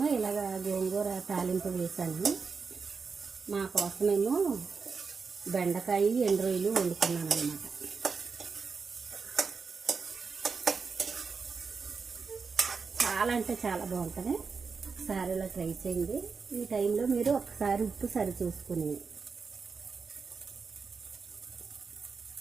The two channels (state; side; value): quieter; left; 5.1 dB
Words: ఇలాగ గోంగూర తాలింపు వేసాను. మా కోసమేమో బెండకాయ ఎండు రొయ్యలు వండుకున్నాను అన్నమాట. చాలా అంటే చాలా బాగుంటుంది. ఒకసారి ఇలా ట్రై చేయండి. ఈ టైంలో మీరు ఒకసారి ఉప్పు సరి చూసుకుని,